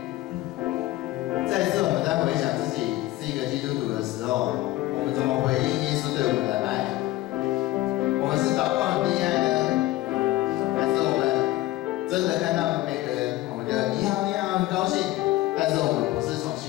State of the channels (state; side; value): quieter; right; 16.8 dB